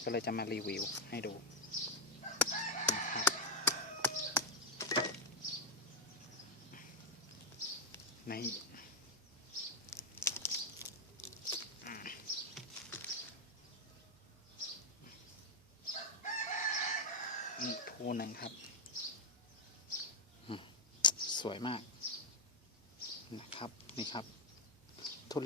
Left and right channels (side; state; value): both; normal; correlation 0.04